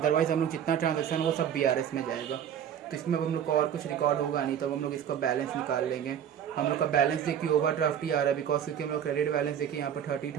हम लोग जितना ट्रांजेक्शन वो सब BRS में जाएगा। तो इसमें अब हम लोग को और कुछ रिकॉर्ड होगा नहीं, तब हम लोग इसका बैलेंस निकाल लेंगे। हम लोग का बैलेंस देखिए ओवरड्राफ्ट ही आ रहा है, बिकॉज क्योंकि हम लोग क्रेडिट बैलेंस देखिए यहाँ पर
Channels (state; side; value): quieter; left; 9.2 dB